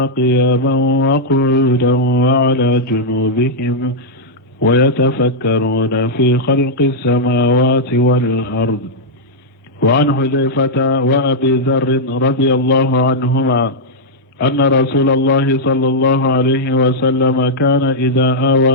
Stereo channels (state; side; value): normal; both; correlation -0.06